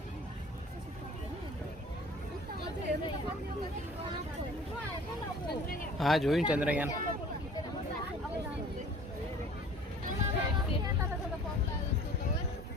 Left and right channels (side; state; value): both; normal; correlation 0.48